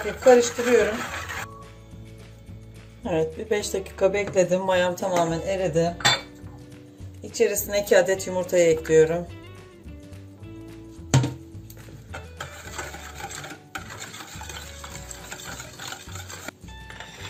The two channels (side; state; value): both; identical; correlation 1.00